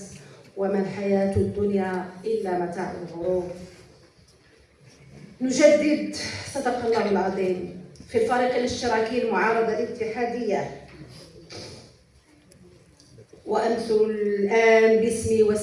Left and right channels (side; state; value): both; identical; correlation 1.00